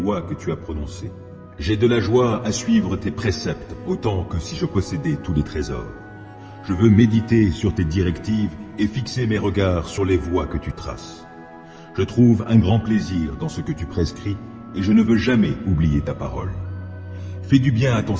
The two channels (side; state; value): both; identical; correlation 1.00